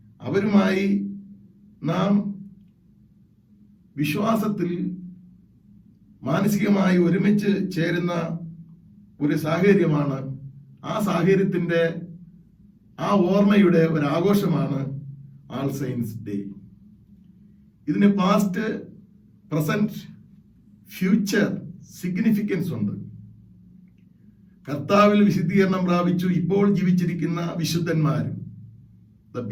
അവരുമായി നാം വിശ്വാസത്തിൽ മാനസികമായി ഒരുമിച്ച് ചേരുന്ന ഒരു സാഹചര്യമാണ്. ആ സാഹചര്യത്തിന്റെ, ആ ഓർമ്മയുടെ ഒരു ആഘോഷമാണ് ആൾ സെയിൻസ് ഡേ. ഇതിന് പാസ്റ്റ്, പ്രസന്റ്, ഫ്യൂച്ചർ സിഗ്നിഫിക്കൻസ് ഉണ്ട്. കർത്താവിൽ വിശുദ്ധീകരണം പ്രാപിച്ചു ഇപ്പോൾ ജീവിച്ചിരിക്കുന്ന വിശുദ്ധന്മാർ, the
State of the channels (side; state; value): both; identical; correlation 1.00